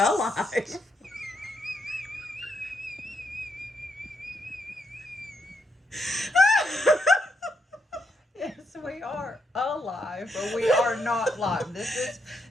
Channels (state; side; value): normal; both; correlation 0.79